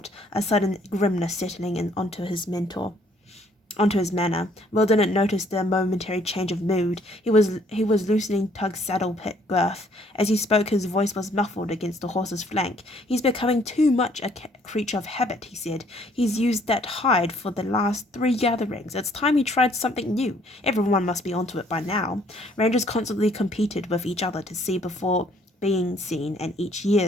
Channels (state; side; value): normal; both; correlation 0.63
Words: a sudden grimness settling in onto his manner. Will didn't notice the momentary change of mood. He was loosening Tug's saddle pit girth. As he spoke, his voice was muffled against the horse's flank. He's becoming too much a creature of habit, he said. He's used that hide for the last 3 gatherings. It's time he tried something new. Everyone must be onto it by now. Rangers constantly competed with each other to see before being seen, and each